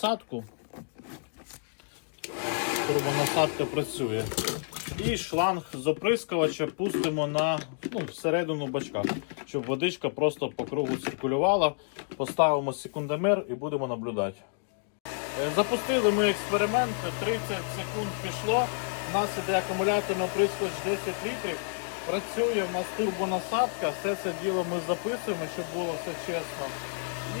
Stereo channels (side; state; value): right; silent; digital silence